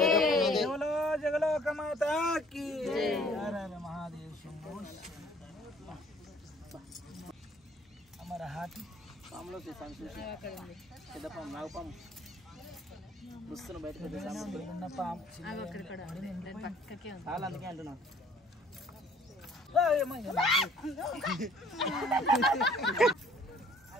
జగలో జగలోక మాతాకి మహాదేవ్ శంభో అమర హాటి పాములో పెద్ద పాము నాగపాము వస్తున్న బయటకు ఉన్న పాము చాలా అందుకే అంటున్నా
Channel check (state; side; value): normal; both; correlation 0.56